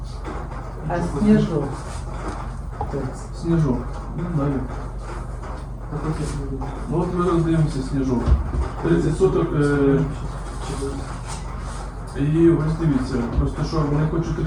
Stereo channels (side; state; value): both; identical; correlation 1.00